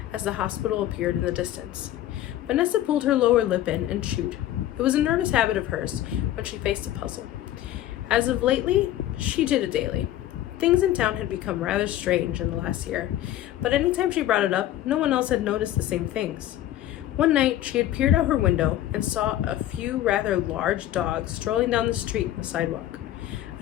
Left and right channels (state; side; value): quieter; right; 13.1 dB